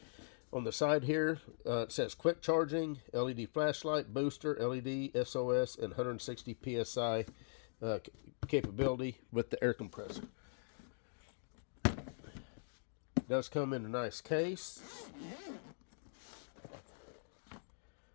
On the side here, it says quick charging, LED flashlight, booster, LED, SOS, and 160 PSI capability with the air compressor. It does come in a nice case.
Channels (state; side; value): silent; right; digital silence